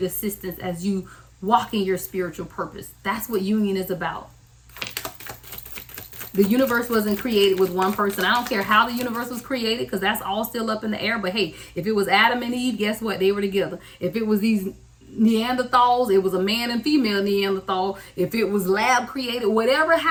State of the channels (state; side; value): identical; both; correlation 1.00